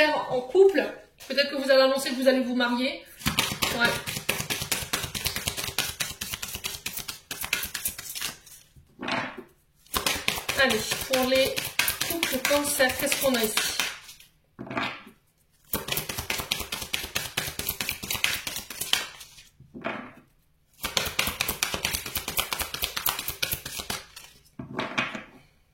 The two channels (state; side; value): identical; both; correlation 1.00